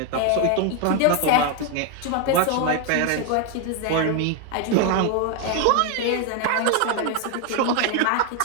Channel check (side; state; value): both; different; correlation 0.01